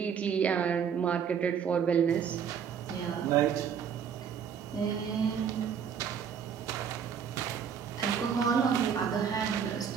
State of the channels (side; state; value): left; quieter; 7.5 dB